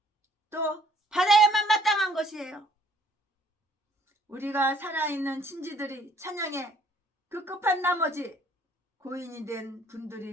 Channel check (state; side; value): normal; both; correlation 0.62